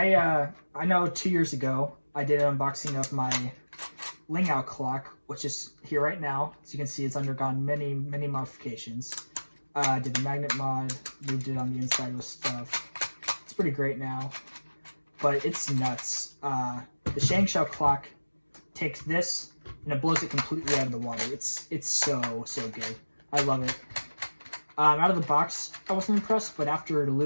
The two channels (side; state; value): both; inverted; correlation -1.00